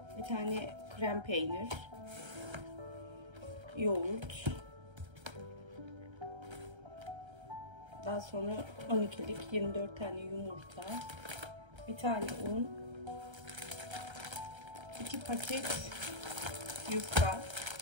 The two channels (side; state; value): left; late; 1.3 ms